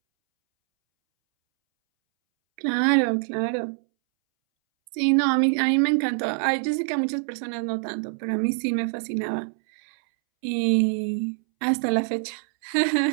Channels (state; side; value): silent; left; 62 dB below the other